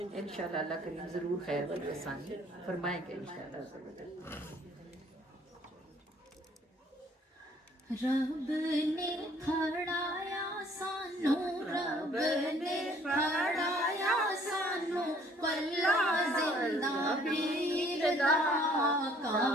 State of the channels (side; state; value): both; normal; correlation 0.59